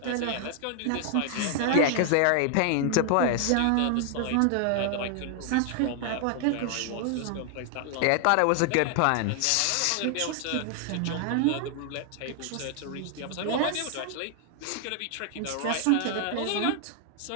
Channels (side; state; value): both; different; correlation 0.00